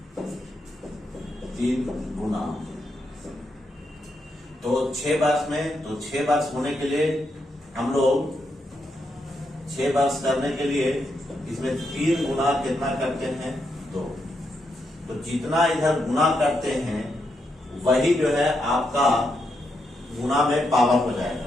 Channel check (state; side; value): normal; both; correlation 0.82